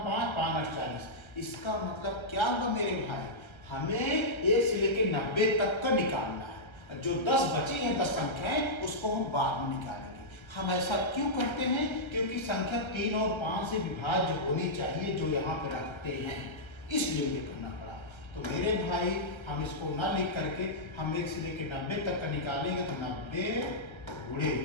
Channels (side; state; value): right; late; 1.3 ms